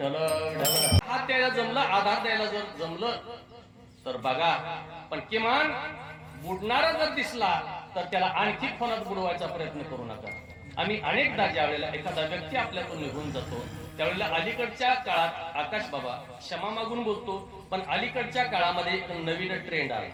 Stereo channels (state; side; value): identical; both; correlation 1.00